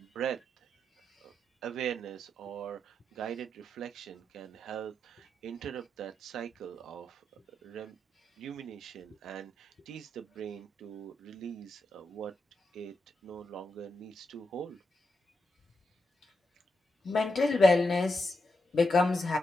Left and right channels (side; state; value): both; normal; correlation 0.85